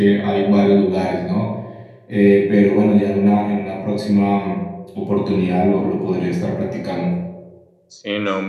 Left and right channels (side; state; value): both; identical; correlation 1.00